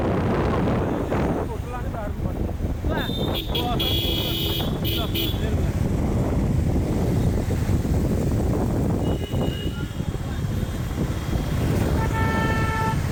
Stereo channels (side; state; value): both; identical; correlation 1.00